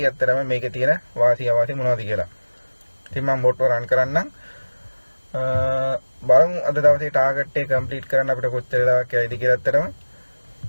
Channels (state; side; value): inverted; both; correlation -1.00